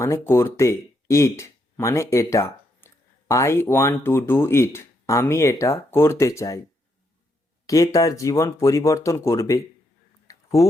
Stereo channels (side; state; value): both; normal; correlation 0.78